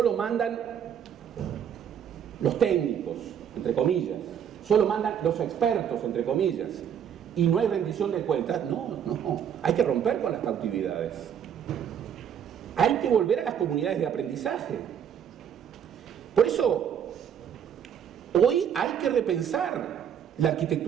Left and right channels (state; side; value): quieter; left; 8.6 dB